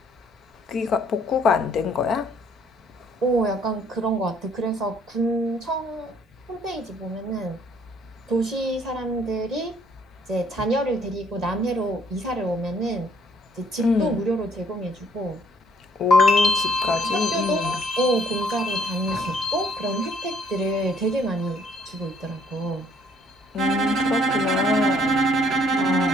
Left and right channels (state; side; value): normal; both; correlation 0.64